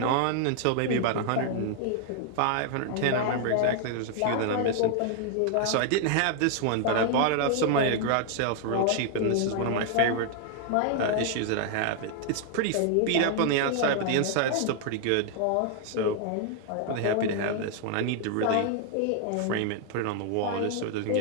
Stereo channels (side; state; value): both; different; correlation 0.00